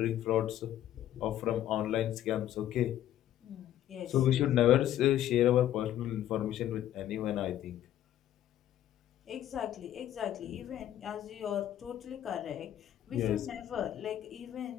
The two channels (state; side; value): quieter; right; 12.0 dB